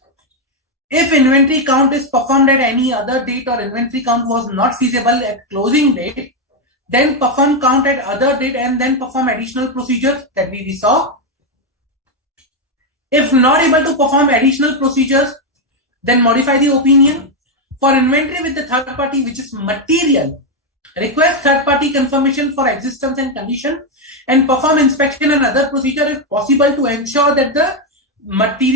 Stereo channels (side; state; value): both; normal; correlation 0.04